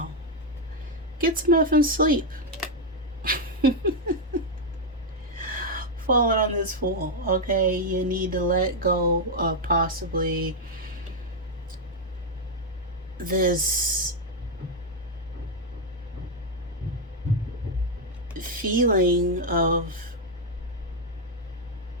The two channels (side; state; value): both; normal; correlation 0.01